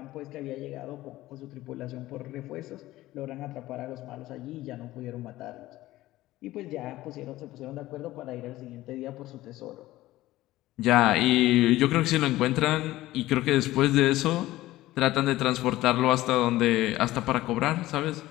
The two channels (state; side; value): quieter; right; 16.5 dB